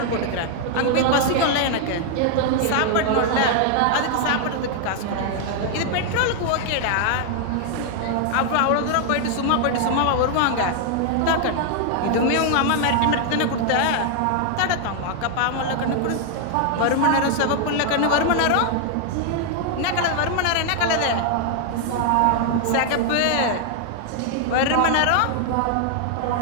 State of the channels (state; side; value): different; both; correlation 0.00